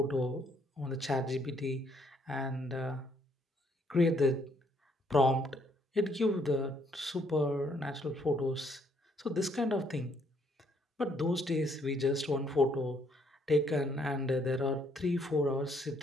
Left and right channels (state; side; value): normal; both; correlation 0.69